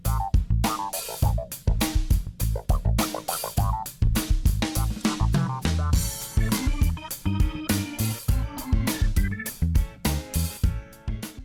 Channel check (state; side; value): identical; both; correlation 1.00